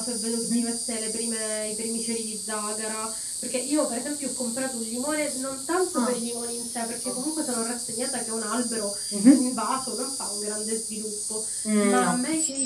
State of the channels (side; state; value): both; identical; correlation 1.00